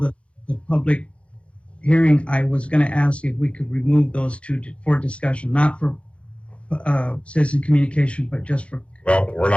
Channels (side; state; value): right; late; 0.060 ms